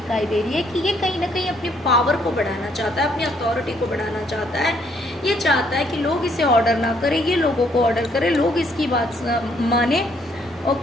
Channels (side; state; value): both; normal; correlation 0.68